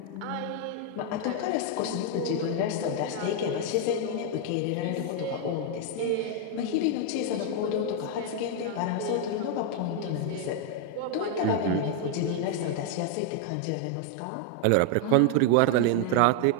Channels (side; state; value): both; different; correlation 0.00